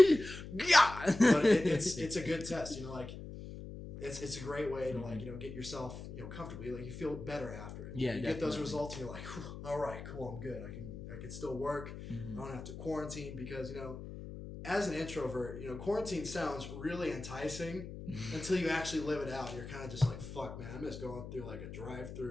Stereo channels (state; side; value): noise; left; hum, 10 dB below the sound